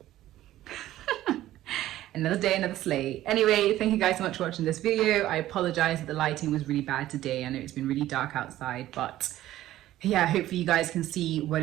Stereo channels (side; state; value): left; quieter; 14.3 dB